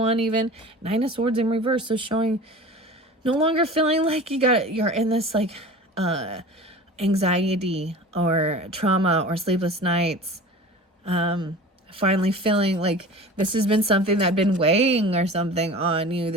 even. Nine of Swords in reverse. So showing no longer feeling like you're in this like anxiety or trauma or sleepless nights. Finally feeling like this has been something that had been weighing or something on you,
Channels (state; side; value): normal; both; correlation 0.38